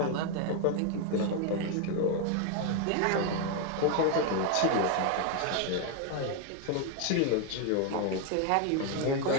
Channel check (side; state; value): both; different; correlation 0.01